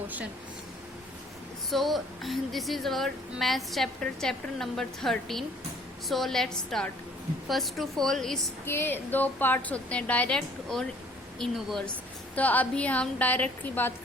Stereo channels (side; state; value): both; normal; correlation 0.57